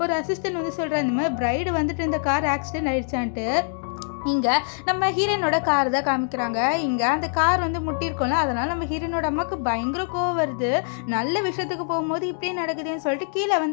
ஒரு அசிஸ்டன்ட் சொல்கிறார், இந்த மாதிரி பிரைடு இந்த கார் ஆக்சிடென்ட் ஆயிடுச்சான்ட்டு. இங்கே நம்ம ஹீரோனோட கார் தான் காமிக்கிறாங்க. இங்கே அந்த கார் முட்டியிருக்கோம்ல, அதனால் நம்ம ஹீரோனோட அம்மாவுக்கு பயங்கர கோவம் வருது. நல்ல விஷயத்துக்கு போகும்போது இப்படியே நடக்குதுன்னு சொல்லிட்டு கீழே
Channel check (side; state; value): right; silent; digital silence